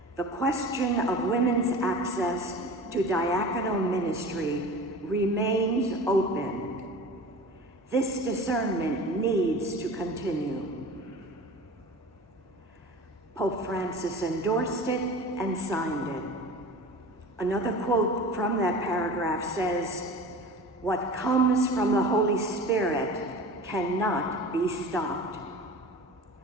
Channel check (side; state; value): both; normal; correlation 0.37